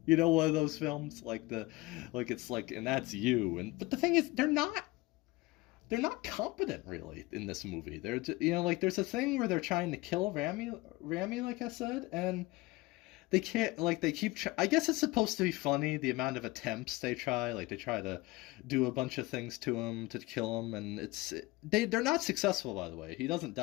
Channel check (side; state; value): right; quieter; 21.1 dB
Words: You know, one of those films like it's like, and that's you. And but the thing is, they're not competent really in this movie. They're like there's a thing where they're trying to kill Rami, like I said, and they can't. Like they keep. I guess it's supposed to be funny the amount of attempts they try. Like they try to do a bunch of things to him to kill him, and they're not successful. By the way, he doesn't